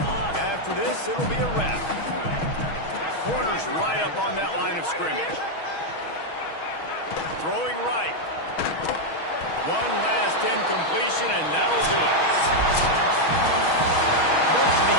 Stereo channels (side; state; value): right; late; 6.3 ms